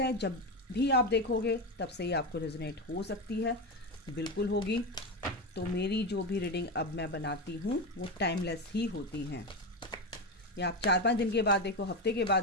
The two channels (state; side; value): normal; both; correlation 0.15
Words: जब भी आप देखोगे तब से ही आपको रेजोनेट हो सकती है, बिल्कुल होगी। तो मेरी जो भी रीडिंग अब मैं बनाती हूँ वो टाइमलेस ही होती हैं। या आप 4-5 दिन के बाद देखो, हफ्ते के बाद